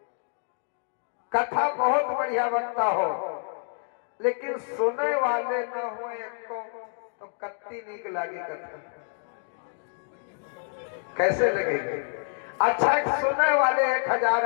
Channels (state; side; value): silent; right; 60 dB below the other